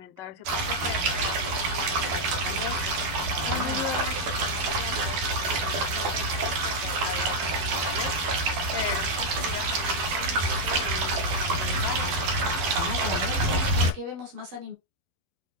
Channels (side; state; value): left; late; 11 ms